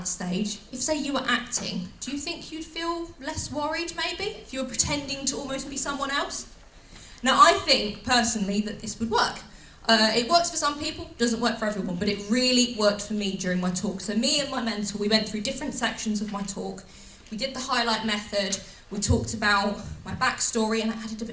stage, if say you were acting, do you think you'd feel less worried maybe? If you were pretending to almost be someone else? Now I think personally that this would work. It works for some people, doesn't work for everyone, but it really worked for me during my talk. So me and my mentor, we went through different sections of my talk. We did the highlight method. We talked about my backstory and I added a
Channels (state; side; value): identical; both; correlation 1.00